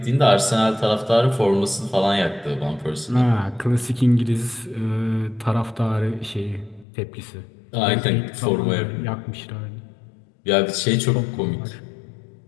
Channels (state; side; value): drops out; right; at 6.9 s